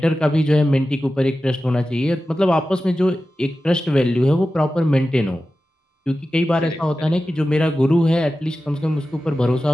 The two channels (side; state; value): both; normal; correlation 0.94